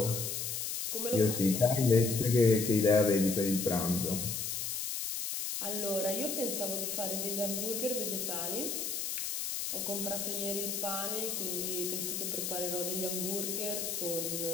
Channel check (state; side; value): noise; left; hiss, 3 dB below the sound